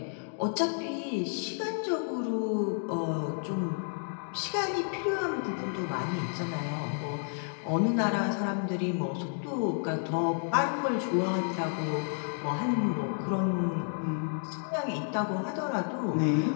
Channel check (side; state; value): right; silent; 57 dB below the other